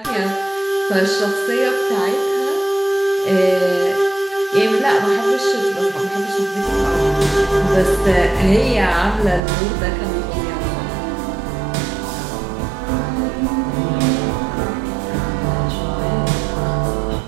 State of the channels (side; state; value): left; drops out; at 9.4 s